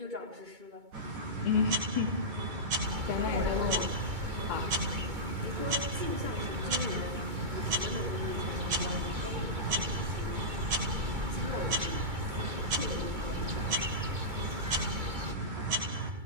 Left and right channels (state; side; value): late; left; 2.2 ms